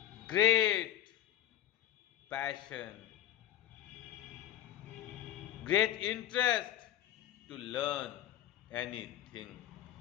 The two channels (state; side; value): quieter; right; 12.2 dB